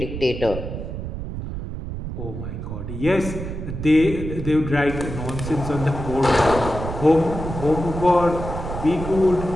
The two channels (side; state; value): right; noise; rumble, 7 dB below the sound